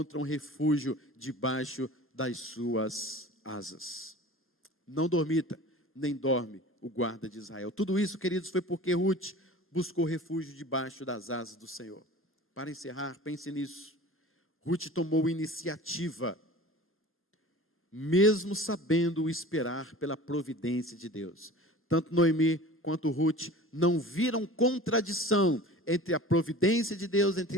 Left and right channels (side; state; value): both; normal; correlation 0.40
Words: refúgio debaixo das suas asas. Não dormita, nem dorme o guarda de Israel. Tudo isso, queridos, foi porque Ruth buscou refúgio debaixo das asas do Senhor. Para encerrar, pense nisso. Ruth tomou iniciativa, mesmo sabendo esperar pela providência de Deus. Tanto Noemi quanto Ruth não viram contradição entre a providência de Deus, entre